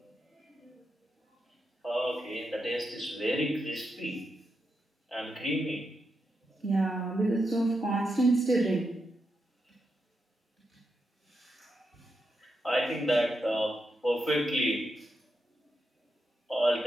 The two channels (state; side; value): normal; both; correlation 0.86